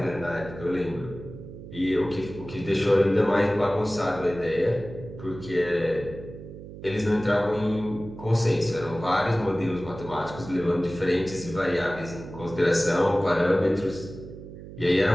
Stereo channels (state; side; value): noise; right; hum, 14 dB below the sound